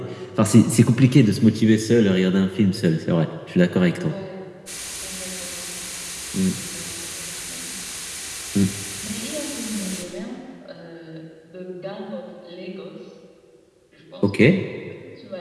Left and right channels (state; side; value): identical; both; correlation 1.00